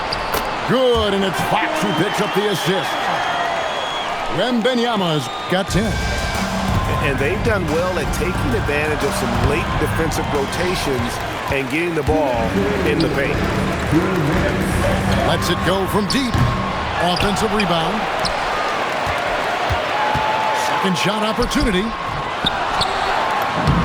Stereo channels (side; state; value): both; identical; correlation 1.00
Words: Good, and it's Fox who picks up the assist. Wembanyama's got 10. And they've done well at taking advantage of some late defensive rotations and getting the ball in the paint. Lets it go from deep. Offensive rebound. Second shot opportunity.